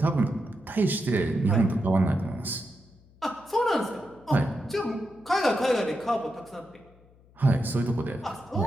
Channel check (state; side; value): noise; left; hum, 28 dB below the sound